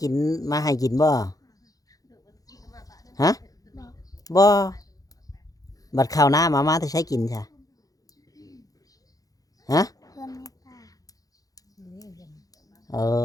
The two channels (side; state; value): right; late; 0.17 ms